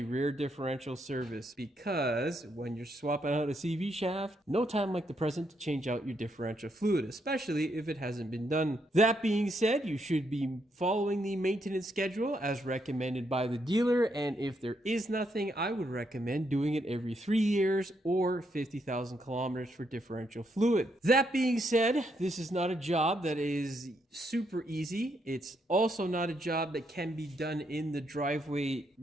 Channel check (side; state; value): both; normal; correlation 0.77